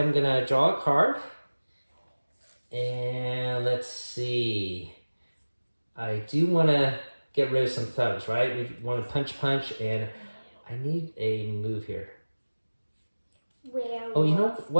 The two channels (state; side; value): inverted; both; correlation -1.00